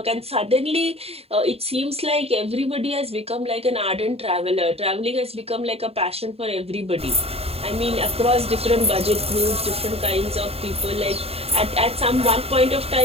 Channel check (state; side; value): late; left; 0.29 ms